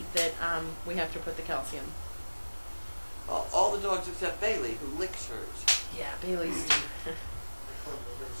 that we have to put the calcium. All the dogs except Bailey, who licks hers. Yeah, Bailey's.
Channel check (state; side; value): inverted; both; correlation -1.00